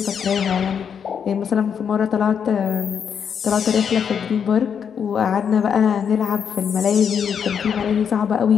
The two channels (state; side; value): quieter; right; 7.4 dB